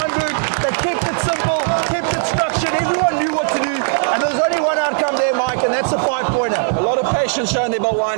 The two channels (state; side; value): silent; left; digital silence